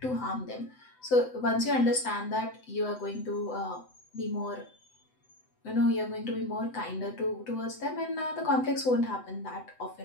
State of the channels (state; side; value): late; right; 7.9 ms